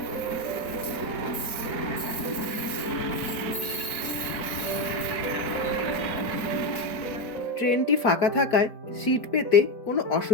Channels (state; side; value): late; right; 4.5 ms